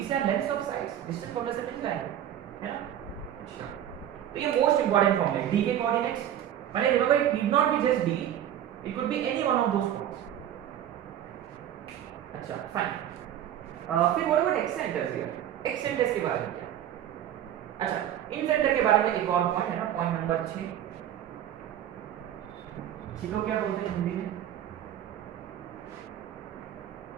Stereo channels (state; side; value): quieter; left; 11.0 dB